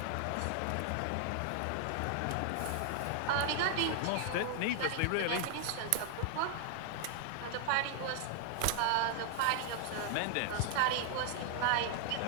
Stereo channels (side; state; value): both; different; correlation 0.00